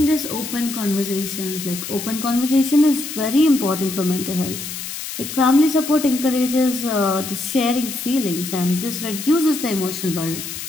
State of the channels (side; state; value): left; noise; hiss, 8 dB below the sound